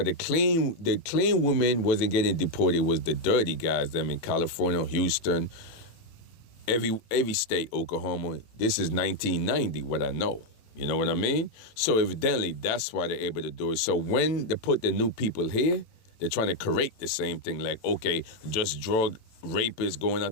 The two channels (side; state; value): right; late; 18 ms